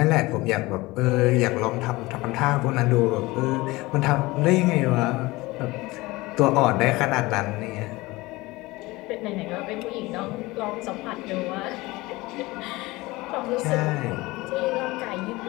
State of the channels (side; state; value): right; quieter; 21.1 dB